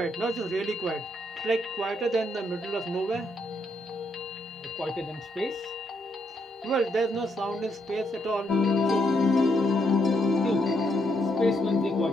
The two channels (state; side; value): normal; both; correlation 0.77